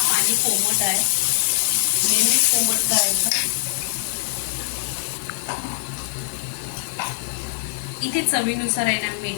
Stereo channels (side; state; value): right; silent; 64 dB below the other